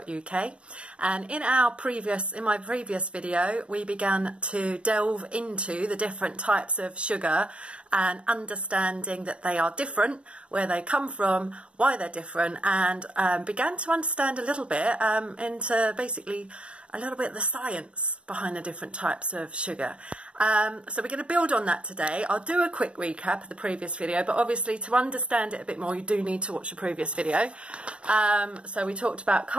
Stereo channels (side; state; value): left; late; 0.060 ms